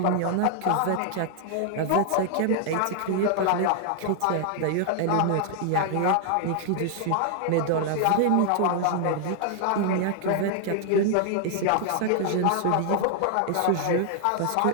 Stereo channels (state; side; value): different; both; correlation 0.00